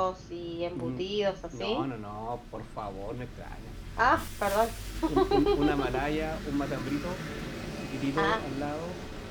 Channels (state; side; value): identical; both; correlation 1.00